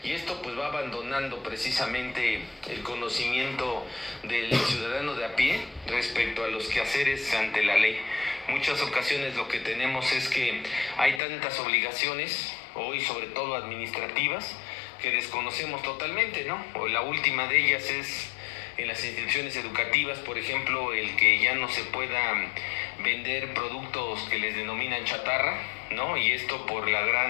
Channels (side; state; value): right; drops out; at 11.2 s